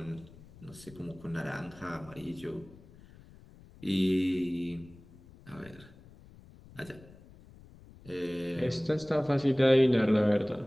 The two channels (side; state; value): left; noise; rumble, 22 dB below the sound